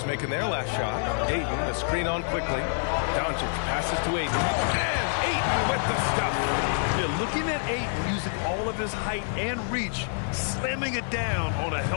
making their last shot. Ayton, the screen on quickly. Doncic passes to Ayton. And Ayton with the stuff. Yeah, looking at Ayton using all of his height and reach, slamming it down on a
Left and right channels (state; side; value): silent; right; 60 dB below the other